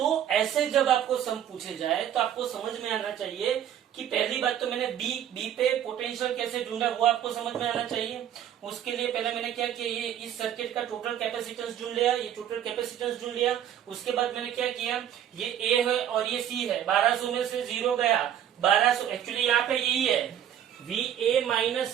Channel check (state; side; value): quieter; left; 10.3 dB